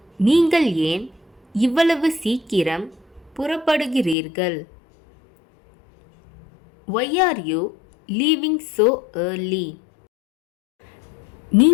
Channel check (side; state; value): right; drops out; at 4.2 s